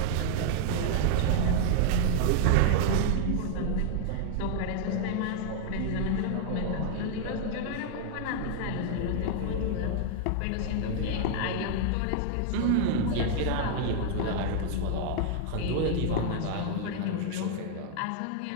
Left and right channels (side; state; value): both; different; correlation 0.00